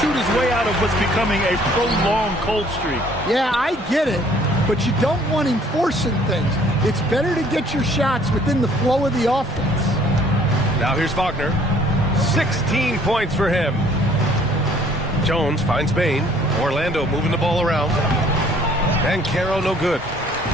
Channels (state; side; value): normal; both; correlation 0.58